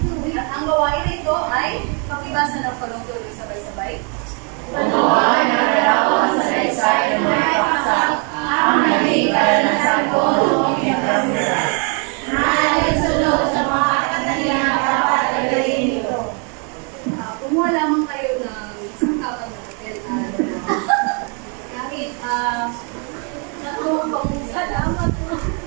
At ang gawain na ito ay pakibasa ng palong-tuloy sabay-sabay. Gumawa ng larawan sa saysay ng mga paksa, ang naging karanasan ko noong pinagkamulas. Naalinsunod sa mga katangian na dapat gagawin nito. Kumuha lamang kayo ng isang kapag na papel kahit tatlong salamat po.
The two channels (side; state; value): left; quieter; 37.2 dB